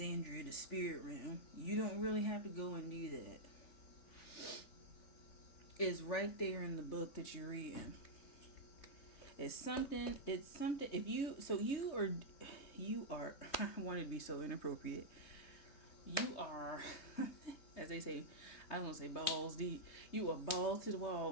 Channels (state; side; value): late; right; 3.2 ms